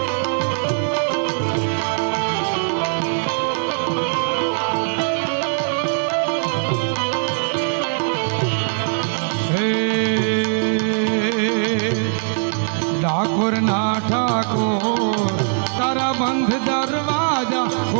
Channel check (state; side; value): silent; left; 61 dB below the other